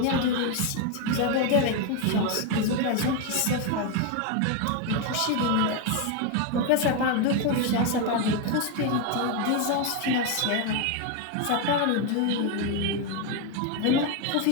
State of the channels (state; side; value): different; both; correlation 0.02